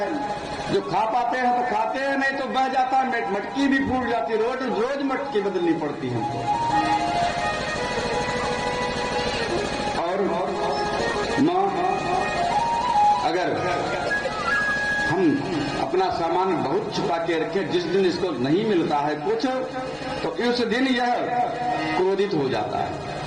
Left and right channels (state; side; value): identical; both; correlation 1.00